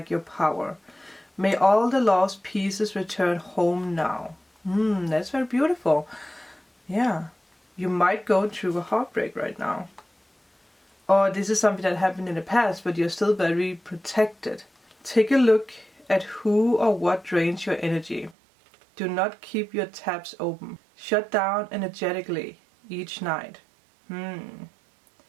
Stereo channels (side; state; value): left; drops out; at 18.4 s